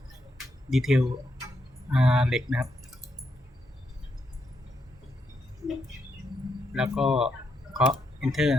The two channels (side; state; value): both; normal; correlation 0.81